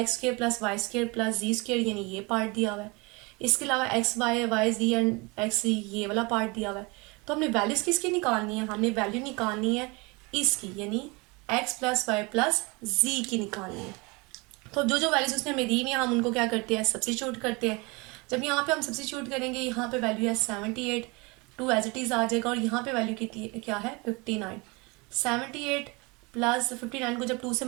square plus Y square plus Z square यानी ये पार्ट दिया हुआ है। इसके अलावा X Y Y Z and X Z ये वाला पार्ट दिया हुआ है। तो हमने वैल्यूज किसकी निकालनी है, हमने वैल्यू निकालनी है इसकी, यानी एक्स प्लस वाई प्लस जी की निकालनी है। तो जो जो वैल्यूज उसने हमें दी हुई हैं हम उनको क्या करते हैं, सब्स्टिट्यूट करते हैं। जब यहाँ पे हम सब्स्टिट्यूट करेंगे, यहाँ पे वैल्यू है 78, 2 एज इट इज आ जाएगा, और यहाँ पे वैल्यू कितनी क्या है 59। 78 प्लस 59 को जब 2 से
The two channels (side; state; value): left; quieter; 27.2 dB